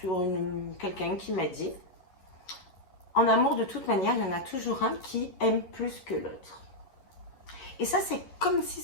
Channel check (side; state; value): right; late; 11 ms